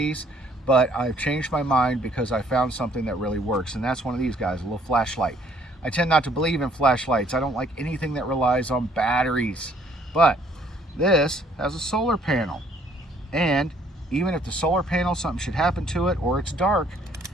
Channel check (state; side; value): normal; both; correlation 0.62